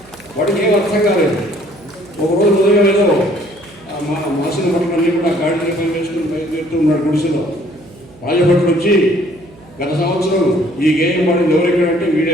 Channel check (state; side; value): noise; right; hum, 24 dB below the sound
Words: వాడికి ఏం అర్థం కాలేదు. ఒకరోజు ఉదయం ఏదో మాసిన భటులన్నీ కూడా గాడిని పని వేసుకుని బయలుదేరుతూ ఉన్నాడు గుడిసెలో. రాజభటులు వచ్చి గత సంవత్సరం ఈ గేయం పాడింది ఎవరెక్కడంటే